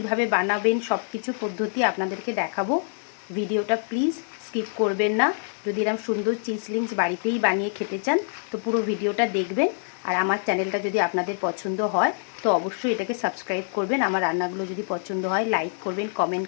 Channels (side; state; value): right; silent; digital silence